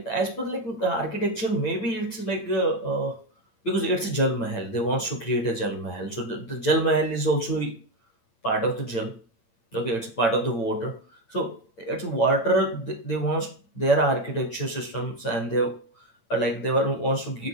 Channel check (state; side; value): late; right; 8.8 ms